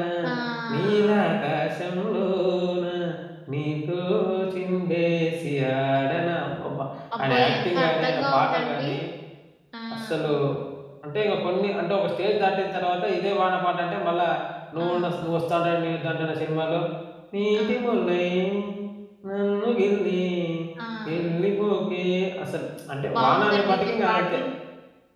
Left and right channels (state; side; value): identical; both; correlation 1.00